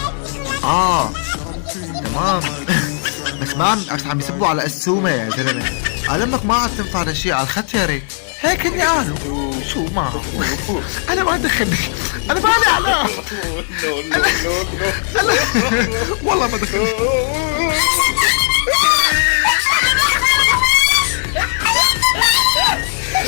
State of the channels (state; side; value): silent; right; digital silence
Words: تمام. بس عم يسبوا على السومة يا زلمة. قال امك ما عاد تنفع لشيء على الختيرة، هيك هني قالوا. شو ما انا ما دخلني، انا مالي على أنا والله ما دخلني.